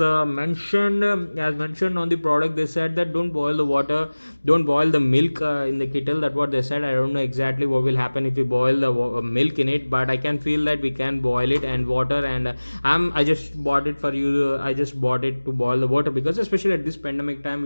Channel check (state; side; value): inverted; both; correlation -1.00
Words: mentioned on the product, they said that don't boil the water, don't boil the milk in the kettle. That's what they said. I don't know exactly what will happen if we boil the milk in it, but I can feel that we can boil it and water. And I just bought it for you. I just bought it to boil the water, because especially at this pandemic time,